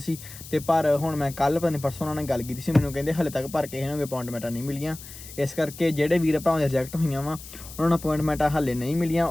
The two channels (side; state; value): left; noise; hiss, 15 dB below the sound